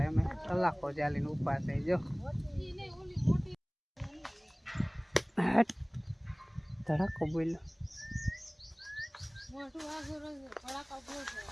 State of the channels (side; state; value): both; identical; correlation 1.00